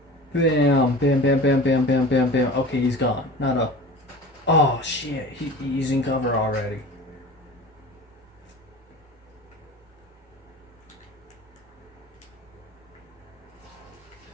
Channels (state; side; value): normal; both; correlation 0.37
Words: bam, bam, bam, bam, bam, bam, bam, bam. Okay, he's gone. Not a, oh shit, he's in cover already.